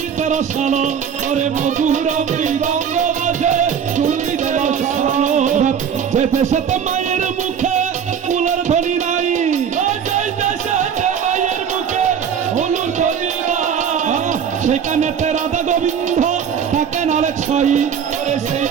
তোর সালো, ওরে মধুর মৃদঙ্গ বাজে শুনি তোর সালো। যে দেশে তো মায়ের মুখে ফুলের ধ্বনি নাই, মায়ের মুখে হলুর ধ্বনি নাই, সেখানে রাধা গোবিন্দ থাকে নালে ছাই,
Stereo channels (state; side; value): quieter; left; 7.7 dB